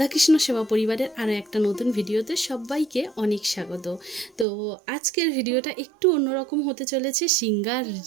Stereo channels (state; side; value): drops out; left; at 4.5 s